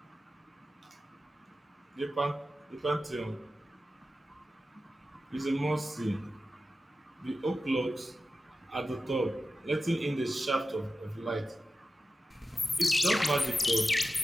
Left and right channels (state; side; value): normal; both; correlation 0.93